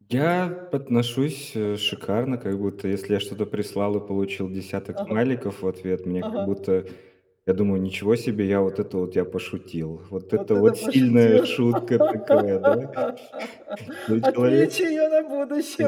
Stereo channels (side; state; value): both; identical; correlation 1.00